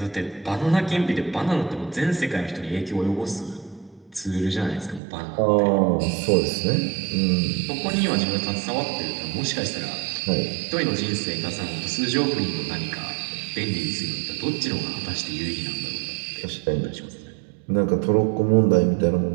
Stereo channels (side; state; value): left; drops out; at 5.0 s